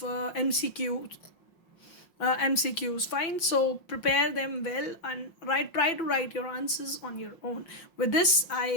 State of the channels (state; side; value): late; right; 5.6 ms